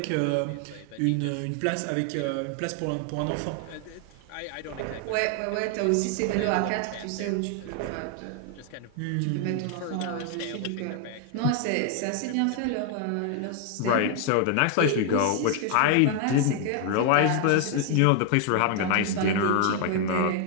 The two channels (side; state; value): both; different; correlation 0.00